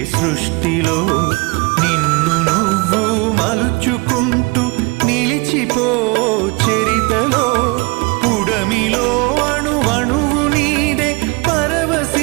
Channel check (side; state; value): left; quieter; 27.0 dB